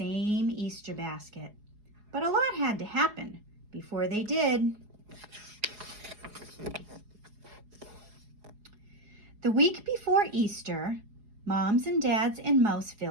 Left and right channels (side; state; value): left; late; 4.8 ms